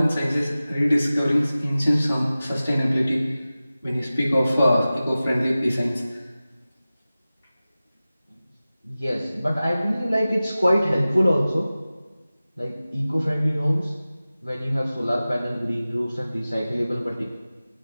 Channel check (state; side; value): inverted; both; correlation -0.96